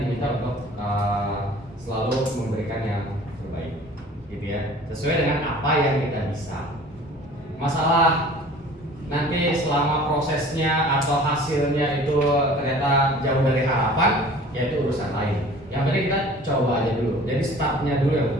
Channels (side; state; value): both; normal; correlation 0.46